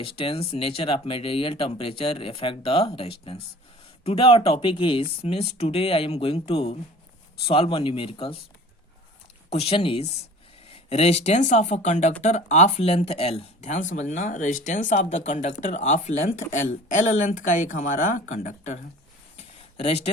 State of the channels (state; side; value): normal; both; correlation 0.44